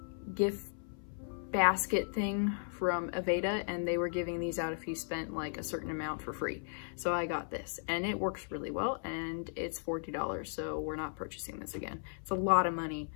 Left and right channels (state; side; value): silent; right; 54 dB below the other